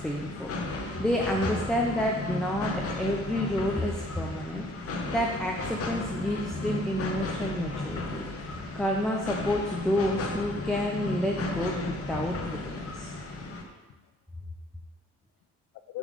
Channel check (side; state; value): both; normal; correlation 0.62